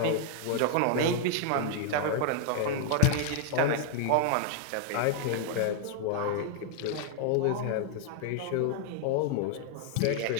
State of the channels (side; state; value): both; different; correlation 0.00